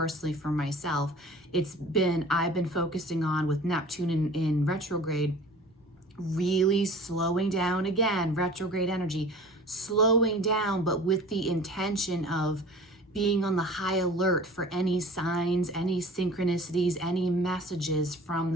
for myself, I've been focusing on with Neptune in retrograde, really slowing down, again, retrograde energy, slowing down, but with the intention of being on the high alert for any signs, any synchronicities, any messages from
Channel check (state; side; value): normal; both; correlation 0.43